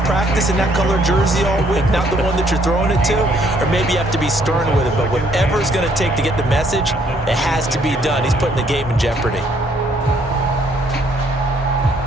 practice in that color jersey all week, not the one that you're throwing it to? Or maybe you have to be stern with it. But whatever it's going to take to get the message, it has to be done. He's putting the game in jeopardy.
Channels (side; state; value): both; normal; correlation 0.66